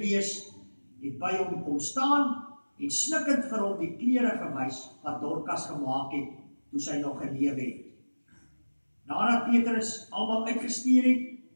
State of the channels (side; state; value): both; inverted; correlation -1.00